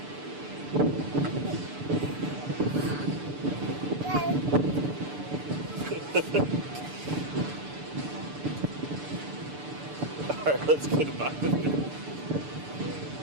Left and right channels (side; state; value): left; late; 6.8 ms